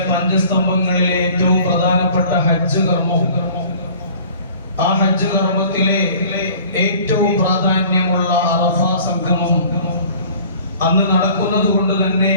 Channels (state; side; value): inverted; both; correlation -0.49